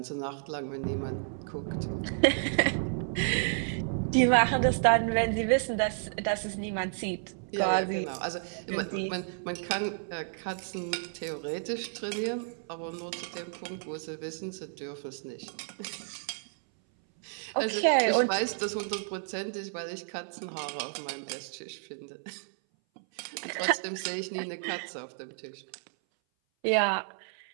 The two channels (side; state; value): left; silent; 57 dB below the other